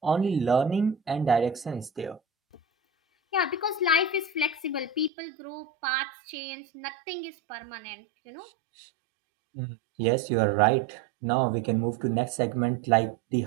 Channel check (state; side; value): drops out; left; at 5.1 s